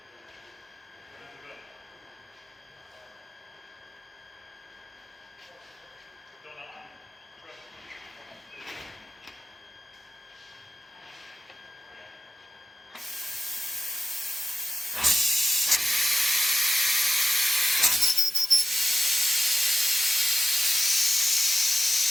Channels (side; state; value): both; normal; correlation 0.93